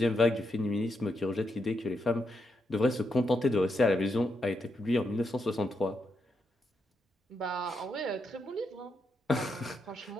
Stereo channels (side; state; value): both; normal; correlation 0.82